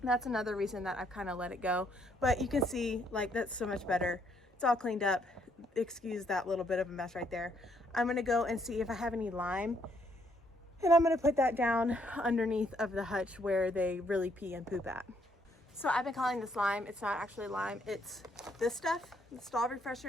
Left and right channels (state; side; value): normal; both; correlation 0.70